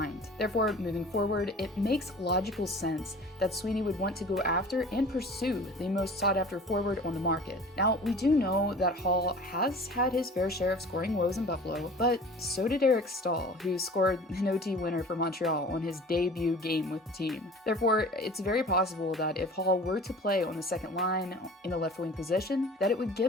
Therefore, moving forward, it makes logical sense that Sweeney would want to go after and pursue the most sought after forward on the market. Now, we do know that Hall has had his fair share of scoring woes in Buffalo, but so did Eric Stahl, who scored an OT winner for Montreal on his debut game with the team. Therefore, it's very possible that if Hall were to play on the second line in the left wing position, that it would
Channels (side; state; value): both; normal; correlation 0.43